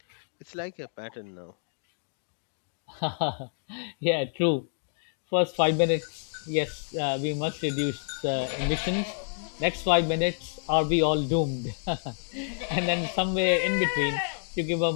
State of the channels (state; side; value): silent; right; digital silence